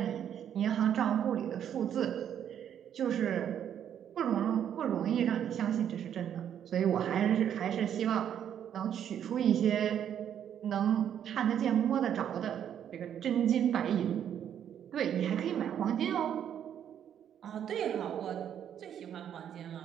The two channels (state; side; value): quieter; left; 9.4 dB